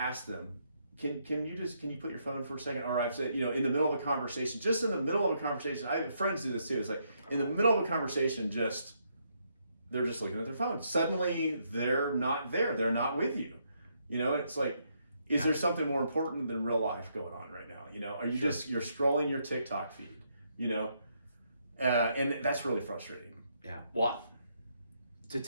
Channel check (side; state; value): both; inverted; correlation -0.75